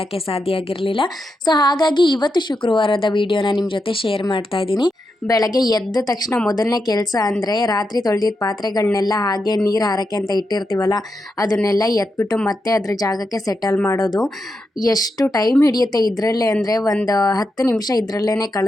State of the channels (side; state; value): both; normal; correlation 0.86